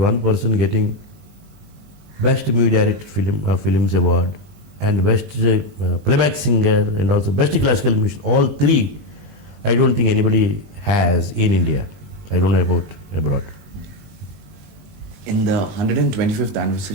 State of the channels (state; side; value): late; left; 20 ms